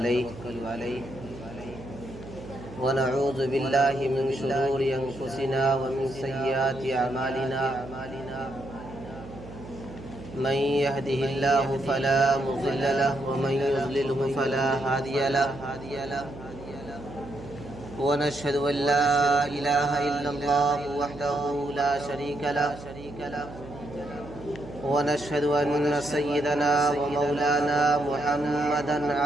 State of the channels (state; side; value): noise; right; hum, 15 dB below the sound